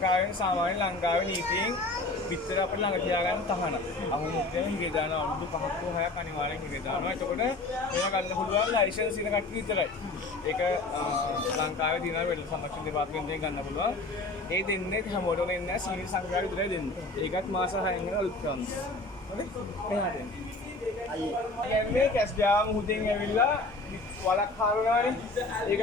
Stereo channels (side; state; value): right; quieter; 3.0 dB